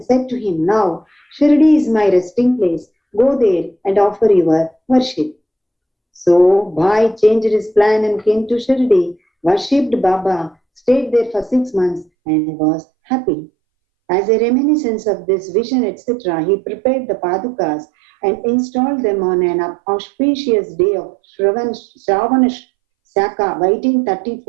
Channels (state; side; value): drops out; left; at 12.1 s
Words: said to him, Now, Shirdi is my resting place. Go there and offer your worship. So, Bhai changed his plan and came to Shirdi, worshipped Baba, stayed there for 6 months and was happy. As a reminiscence of this vision, etc., he prepared the Padukas and installed them on an auspicious day of Shravana Shaka,